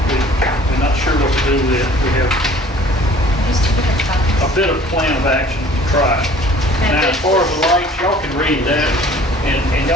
we're not sure what to do with it. We have Just to look at a copies. bit of plan of action to try. Now, as far as the lights, y'all can read that, and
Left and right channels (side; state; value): both; normal; correlation 0.51